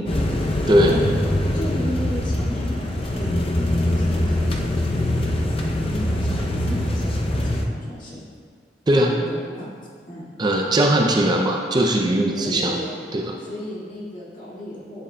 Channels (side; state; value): both; normal; correlation 0.77